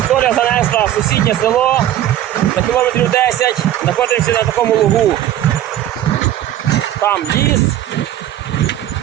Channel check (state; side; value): quieter; left; 12.4 dB